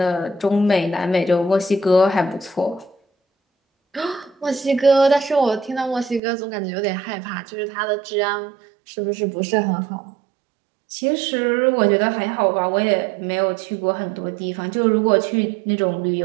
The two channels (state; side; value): drops out; left; at 6.2 s